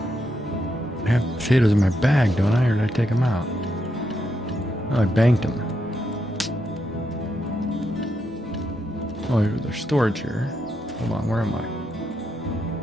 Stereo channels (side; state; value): both; normal; correlation 0.81